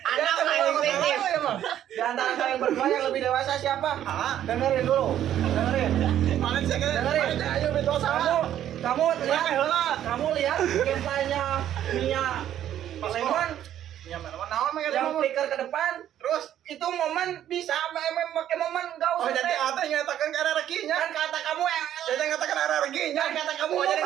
Anda mulai fiktif. Di antara kalian berdua yang lebih dewasa siapa? Dengerin dulu. Dengerin. Dengerin. Ayo betul sama. Kamu lihat gameplaynya Mia Lemon yang flicker ke depan, terus itu momen bisa pakai momen enggak usah. Oh jadi ada yang nyatakan karena rekinya. Kan kata kamu jadi nyatakan karena rekinya. Kan kata kamu jadi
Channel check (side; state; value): left; quieter; 11.2 dB